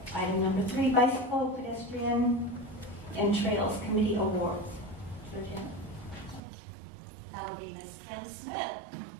number 3, Bicycle, Pedestrian, and Trails Committee Awards. Georgia? That'll be Miss Kim Smith.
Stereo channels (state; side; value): drops out; left; at 6.4 s